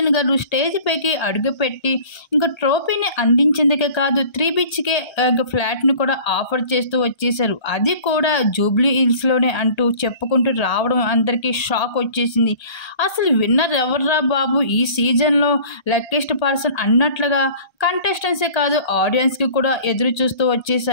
గారు స్టేజ్ పైకి అడుగుపెట్టి ఇంకా ట్రోఫీని అందించేందుకే కాదు 3 BHK ఫ్లాట్ని కూడా ఆఫర్ చేస్తూ వచ్చేసారు. అది కూడా జూబ్లీ హిల్స్లోనే అంటూ చెప్పుకుంటూ రావడం అందరికీ షాక్ వచ్చేసింది. అసలు విన్నర్ ఎవర్రా బాబు ఈ సీజన్లో లక్కీస్ట్ పర్సన్ అన్నట్లుగా కంటెస్టెంట్సే కాదు ఆడియన్స్కి కూడా ఎదురు చూస్తూ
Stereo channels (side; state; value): right; late; 1.3 ms